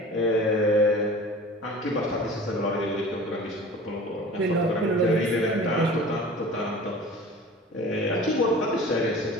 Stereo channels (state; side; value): normal; both; correlation 0.41